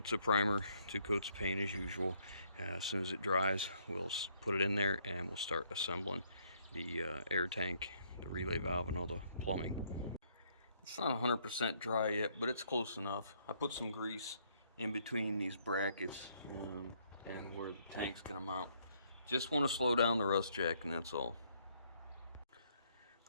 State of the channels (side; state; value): both; inverted; correlation -0.68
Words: of primer, 2 coats of paint as usual. As soon as it dries, we'll put it in there and we'll start assembling the air tank, the relay valve, and all the plumbing. It's not 100% dry yet, but it's close enough. I put some grease in between these brackets and where the tank's gonna mount. Just want to slow down the rust jack, and that's all.